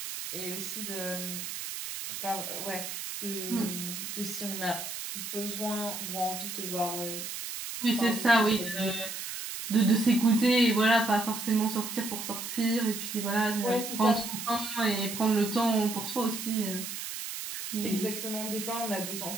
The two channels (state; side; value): noise; right; hiss, 6 dB below the sound